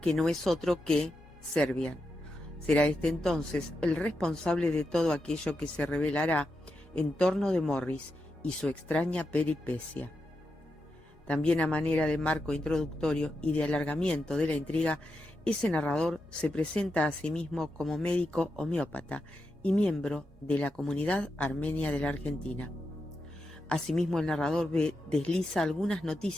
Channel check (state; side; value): normal; both; correlation 0.87